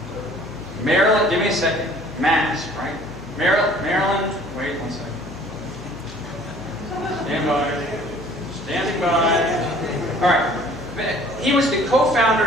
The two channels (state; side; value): noise; left; hum, 18 dB below the sound